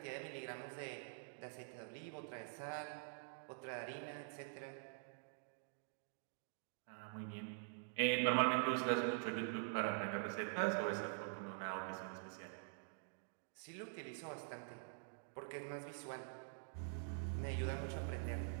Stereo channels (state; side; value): silent; left; digital silence